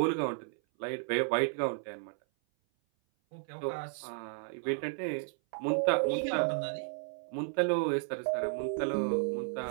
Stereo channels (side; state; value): left; silent; 56 dB below the other